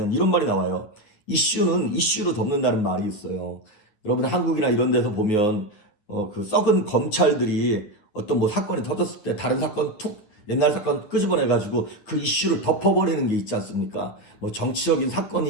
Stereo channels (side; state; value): right; late; 9.7 ms